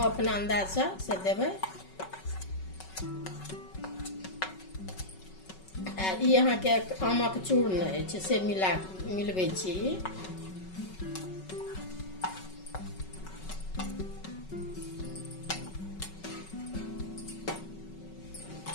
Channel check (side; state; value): right; late; 5.3 ms